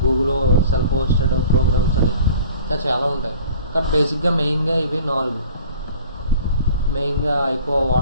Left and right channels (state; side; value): inverted; both; correlation -0.46